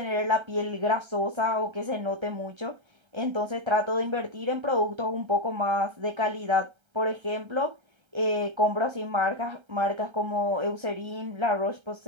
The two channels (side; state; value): left; late; 1.3 ms